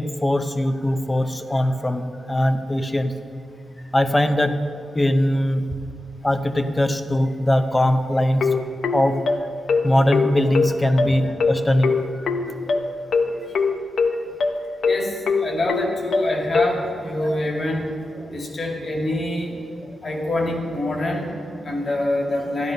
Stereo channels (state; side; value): normal; both; correlation 0.92